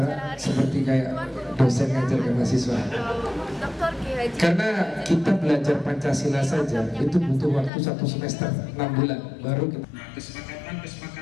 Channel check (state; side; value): drops out; right; at 7.7 s